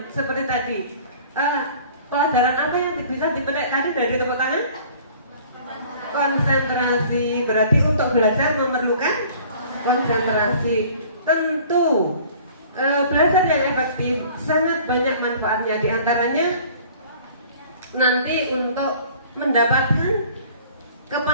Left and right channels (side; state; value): both; inverted; correlation -0.50